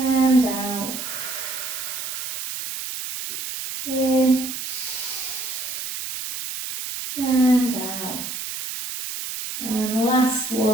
out. In. And out. And last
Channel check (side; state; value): right; noise; hiss, 6 dB below the sound